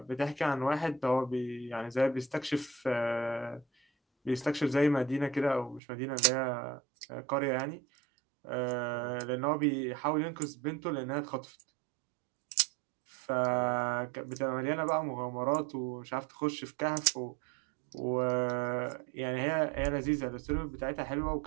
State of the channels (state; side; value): drops out; left; at 5.8 s